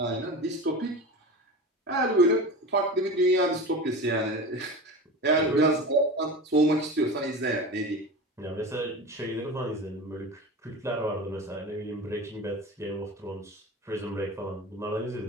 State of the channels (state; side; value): normal; both; correlation 0.30